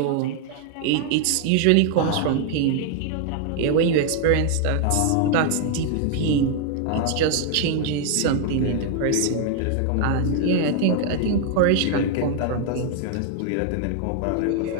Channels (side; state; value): both; different; correlation 0.00